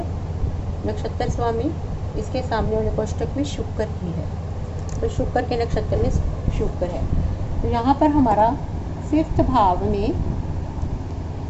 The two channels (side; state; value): both; identical; correlation 1.00